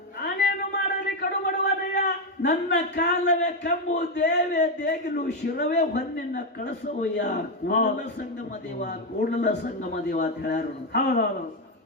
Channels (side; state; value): both; normal; correlation 0.07